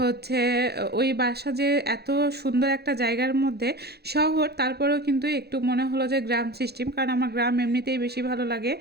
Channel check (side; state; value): left; late; 0.47 ms